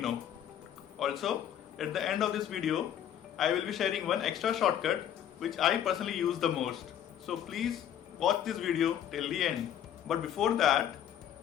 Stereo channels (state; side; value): quieter; right; 10.1 dB